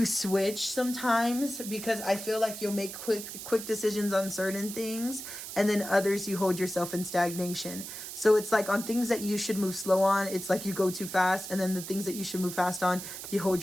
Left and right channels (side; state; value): right; noise; hiss, 9 dB below the sound